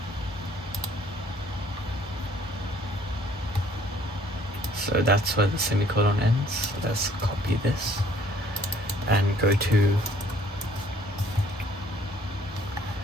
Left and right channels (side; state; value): both; normal; correlation 0.59